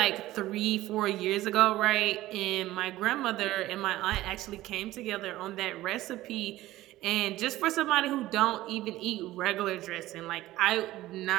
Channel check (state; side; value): quieter; left; 16.2 dB